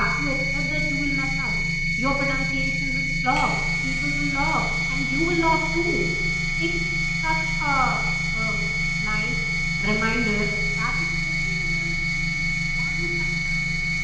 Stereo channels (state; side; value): identical; both; correlation 1.00